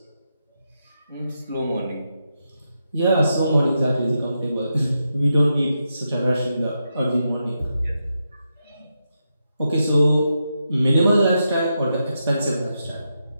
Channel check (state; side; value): inverted; both; correlation -0.85